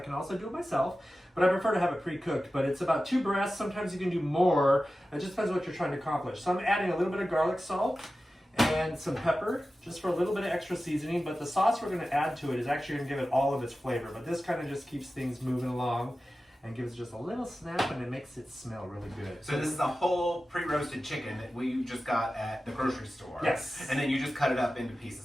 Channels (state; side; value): normal; both; correlation 0.94